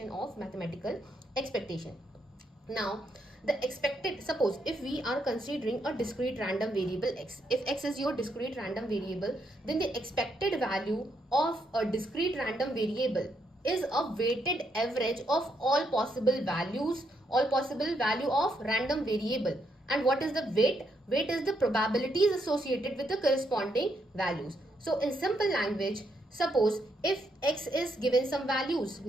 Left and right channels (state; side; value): normal; both; correlation 0.77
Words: of mathematical expectation. Now the expected, suppose if we are considering a discrete random variable x, if x is your discrete random variable, then the expected value of a discrete random variable is a weighted average of all possible values, all possible value of random variable. And what is the weight? Weight is the probabilities associated with the corresponding values. So in simple language, suppose if x is given some values